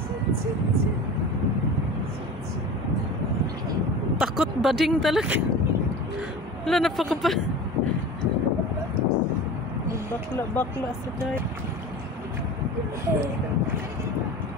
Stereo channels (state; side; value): normal; both; correlation 0.34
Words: Takot bading talaga. Wala na pa ka pa. Bakla sa day.